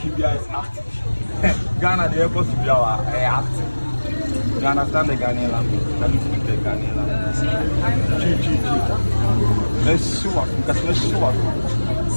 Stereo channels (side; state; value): both; inverted; correlation -1.00